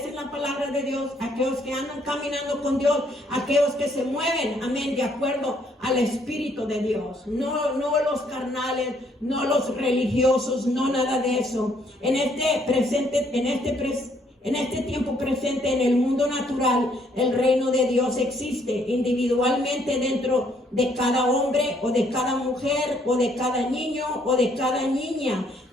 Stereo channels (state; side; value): normal; both; correlation 0.68